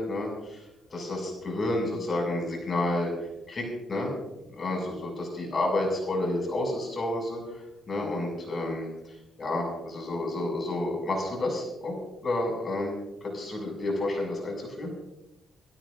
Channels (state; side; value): normal; both; correlation 0.78